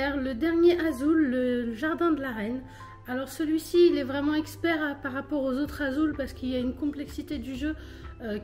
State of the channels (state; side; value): identical; both; correlation 1.00